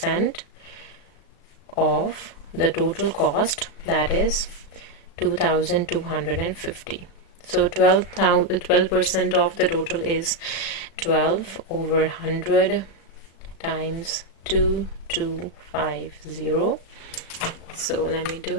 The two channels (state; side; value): late; right; 36 ms